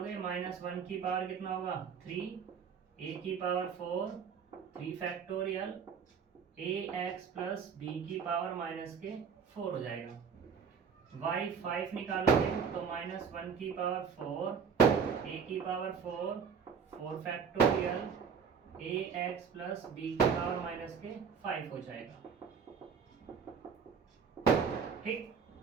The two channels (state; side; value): quieter; left; 6.4 dB